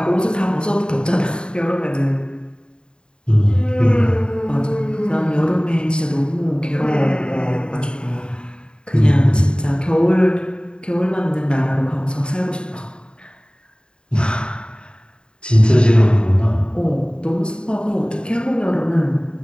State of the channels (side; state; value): right; late; 0.050 ms